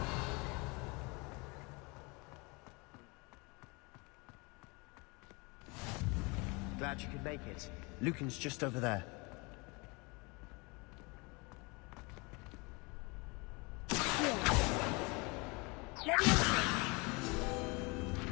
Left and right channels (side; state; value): right; quieter; 28.0 dB